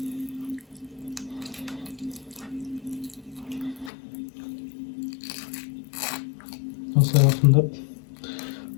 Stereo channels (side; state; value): right; drops out; at 3.9 s